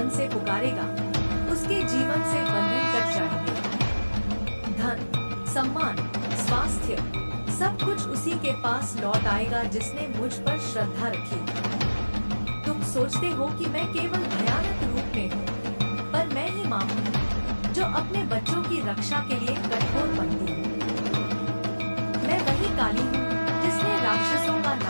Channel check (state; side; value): inverted; both; correlation -1.00